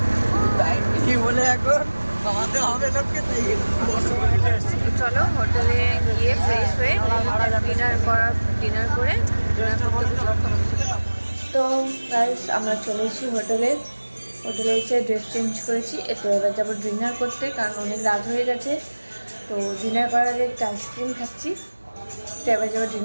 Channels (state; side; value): inverted; both; correlation -1.00